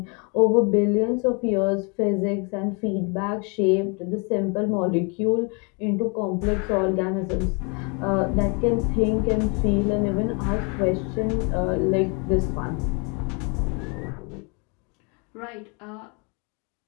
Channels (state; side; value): quieter; right; 33.4 dB